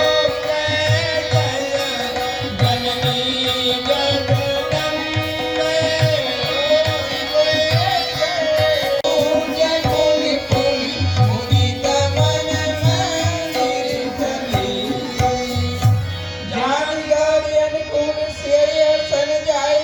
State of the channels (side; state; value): both; identical; correlation 1.00